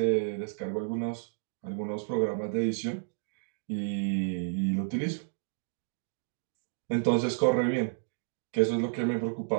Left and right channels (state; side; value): silent; left; digital silence